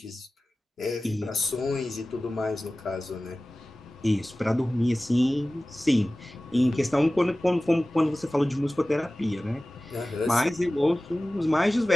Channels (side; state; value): both; normal; correlation 0.97